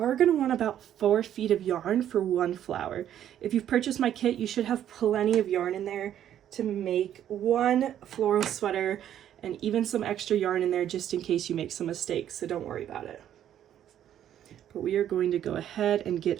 going to want about 4 feet of yarn for one flower. If you've purchased my kit, you should have plenty of yarn in there to make one floral sweater, and even some extra yarn in there just in case you make some mistakes, so don't worry about it. But we are going to go ahead and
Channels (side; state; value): left; quieter; 10.7 dB